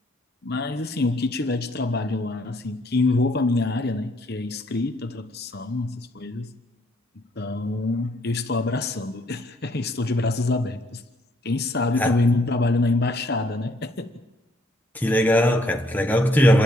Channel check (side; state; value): both; normal; correlation 0.67